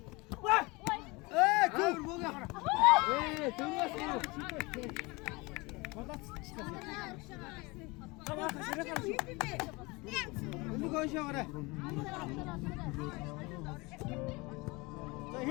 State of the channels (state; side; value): quieter; right; 25.1 dB